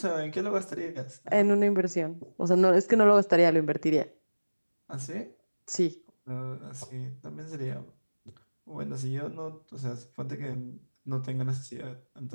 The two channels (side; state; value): both; inverted; correlation -1.00